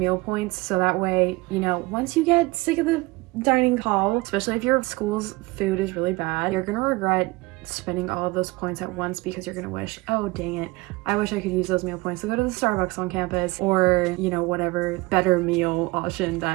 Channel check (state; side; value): quieter; left; 22.7 dB